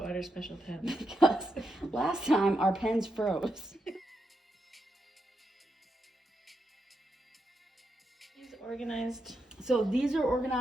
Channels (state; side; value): normal; both; correlation 0.84